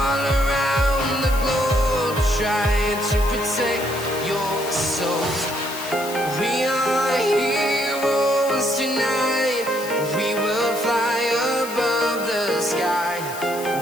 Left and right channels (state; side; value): noise; left; hiss, 13 dB below the sound